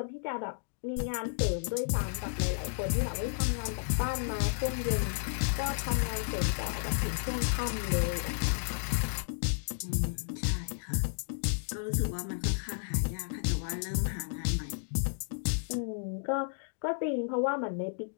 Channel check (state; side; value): silent; right; digital silence